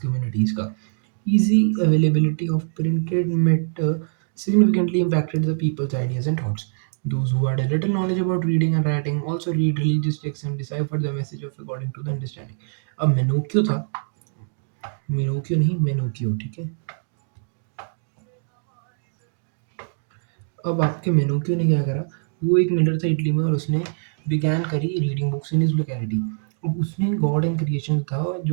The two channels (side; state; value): left; silent; digital silence